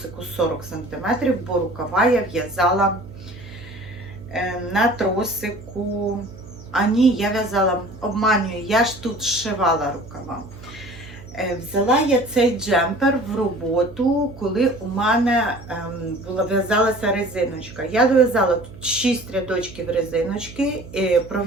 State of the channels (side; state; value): right; noise; hum, 17 dB below the sound